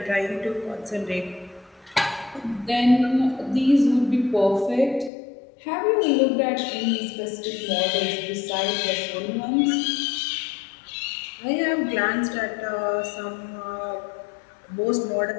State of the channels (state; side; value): drops out; right; at 5.1 s